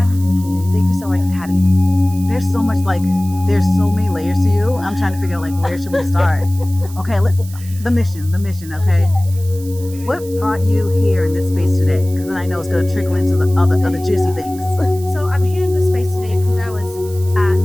Thank you so much for having me. There's so much, there's so many layers to you. I'm trying to figure out, where should we start? Okay, the mission, okay? What brought you here in this space today? Because then I know it's going to trickle into the other juicy things. So I'm here in this space today because I was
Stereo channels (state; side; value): noise; right; hiss, 18 dB below the sound